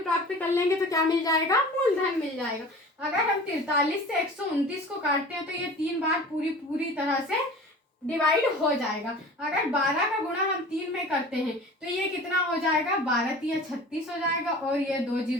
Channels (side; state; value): both; normal; correlation 0.40